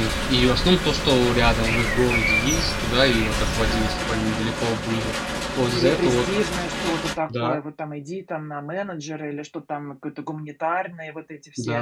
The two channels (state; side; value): identical; both; correlation 1.00